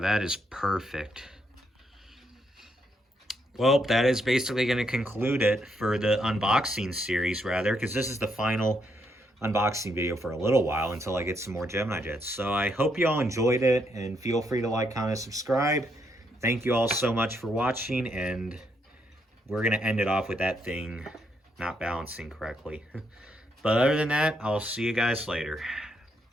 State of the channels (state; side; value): normal; both; correlation 0.76